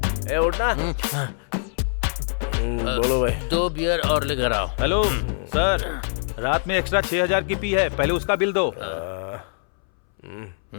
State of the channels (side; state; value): right; silent; 62 dB below the other